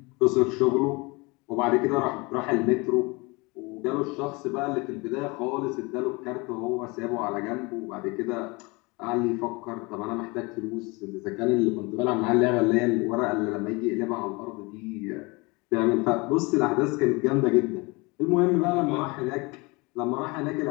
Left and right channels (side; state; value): right; quieter; 26.3 dB